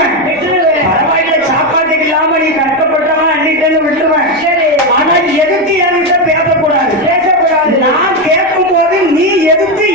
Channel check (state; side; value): noise; left; rumble, 28 dB below the sound